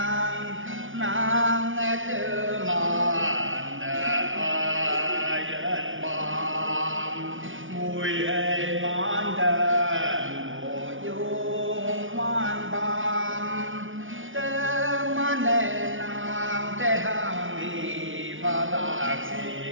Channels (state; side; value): late; left; 0.57 ms